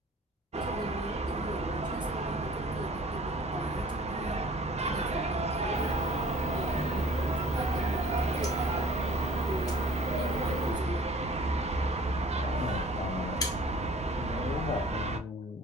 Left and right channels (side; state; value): both; normal; correlation 0.49